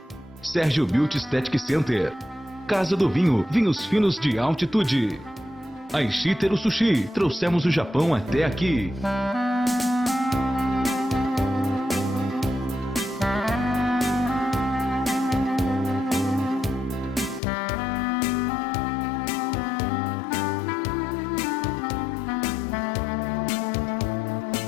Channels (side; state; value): right; drops out; at 17.4 s